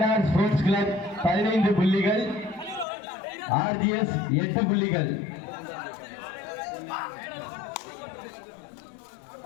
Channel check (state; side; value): drops out; right; at 2.9 s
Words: ஸ்போர்ட்ஸ் கிளப் 15 புள்ளிகள், ஆர்ஜிஎஸ் 8 புள்ளிகள்.